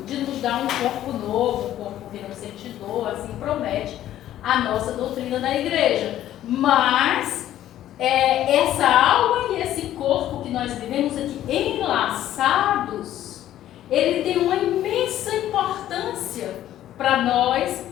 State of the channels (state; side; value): quieter; right; 12.5 dB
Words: de nos dar um corpo novo, um corpo que não sente dor, assim promete a nossa doutrina da igreja. Mas essa alma e esse corpo que nós vivemos aqui enlaçados, ele tem uma imensa importância para nós